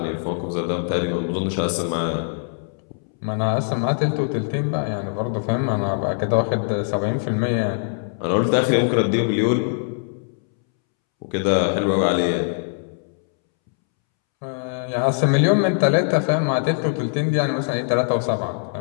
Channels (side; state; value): right; silent; 64 dB below the other